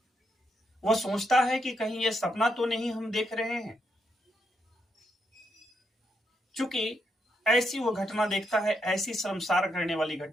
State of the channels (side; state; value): both; normal; correlation 0.79